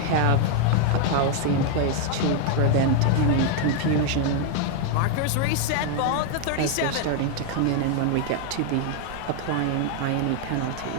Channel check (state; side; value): different; both; correlation 0.00